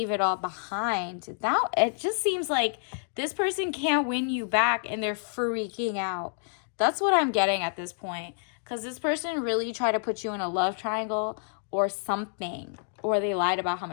it all behind. Now, it just seems like this person can't win you back and they're freaking out. That's what I'm getting at this point. Because this person really tried to put you in a love triangle or something. Or they lied about how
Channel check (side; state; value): right; silent; digital silence